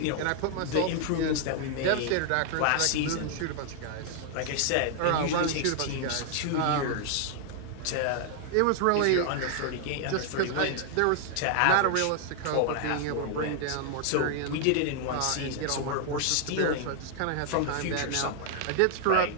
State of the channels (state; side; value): different; both; correlation 0.00